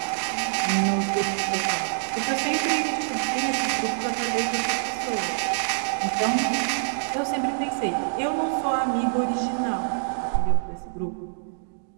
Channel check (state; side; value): silent; left; digital silence